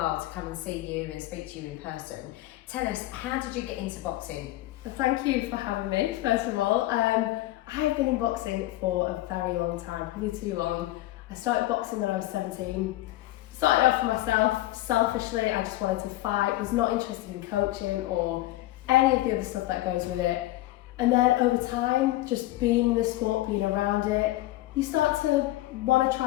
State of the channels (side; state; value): right; quieter; 16.7 dB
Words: to come and see you and speak to you in person. Tell us, how did you get into boxing? Well, thank you for having me, first of all. I've been in boxing for a very long time, probably too long. I started boxing when I was 17. Started off for myself, selfishly, I just wanted to fight, was not interested in coaching or any of the other stuff that goes with it. And then over time, just being in the sport, being around it, you start to want to